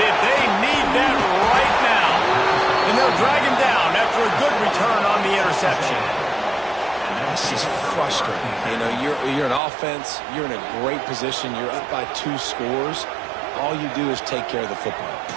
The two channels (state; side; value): drops out; left; at 9.6 s